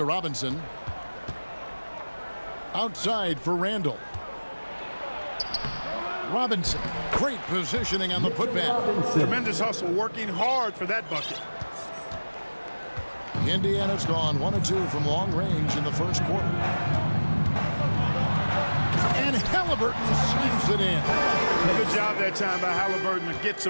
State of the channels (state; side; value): inverted; both; correlation -1.00